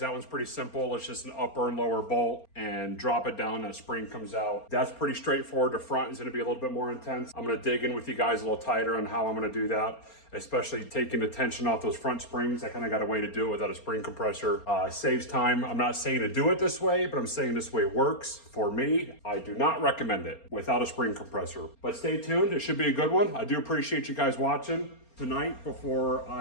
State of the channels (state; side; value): late; right; 4.3 ms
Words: that one's pretty simple. It's just an upper and lower bolt, and drop it down and a spring comes out. That's pretty straightforward. The front is gonna be a little bit more intense. I'm gonna dig in with you guys a little tighter on how I'm gonna do that, especially taking the tension off those front springs. I kind of got a way to do it without a spring compressor. Saves time. I'm not saying to do it this way, but I'm saying this way works for me. I do not recommend it without a spring compressor. But stay tuned. It should be a good one. I do appreciate you guys watching. Tonight, before